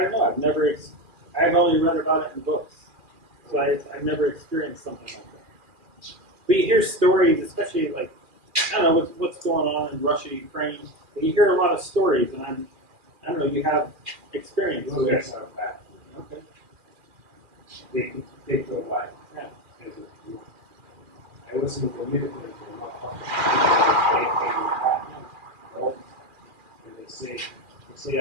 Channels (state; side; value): late; left; 2.4 ms